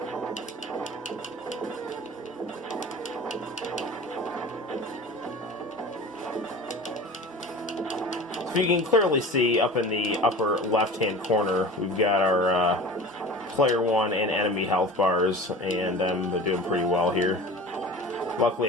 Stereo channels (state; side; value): normal; both; correlation 0.37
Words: So you can clearly see up in the upper left-hand corner, we've got our player 1 and enemy health bars, and I'm doing pretty well here.